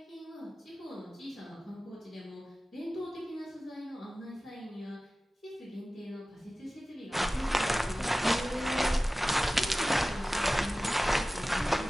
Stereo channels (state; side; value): normal; both; correlation 0.97